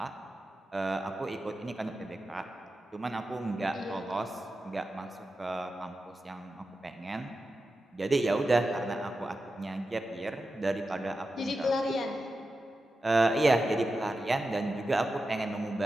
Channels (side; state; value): both; normal; correlation 0.91